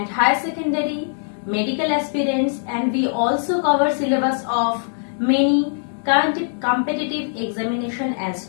higher secondary, medical aspirants, and we also cover syllabus of many competitive examination as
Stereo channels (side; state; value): right; silent; digital silence